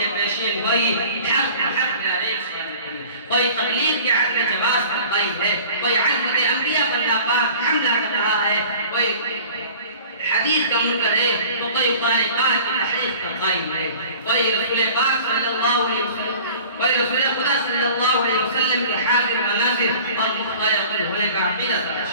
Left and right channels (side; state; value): both; inverted; correlation -0.45